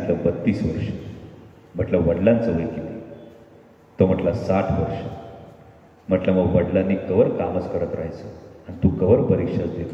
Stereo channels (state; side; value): identical; both; correlation 1.00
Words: 32 वर्ष. म्हटलं वडिलांचं वय किती? तो म्हटला 60 वर्ष. म्हटलं मग वडिलांनी कवर कामच करत राहायचं आणि तू कवर परीक्षाच देत